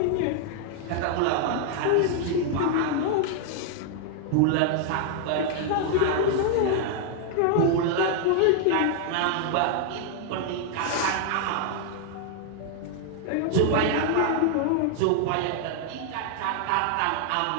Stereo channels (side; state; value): both; different; correlation 0.00